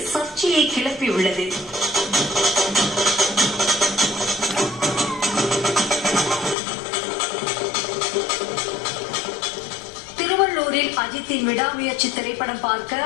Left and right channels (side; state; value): right; drops out; at 6.6 s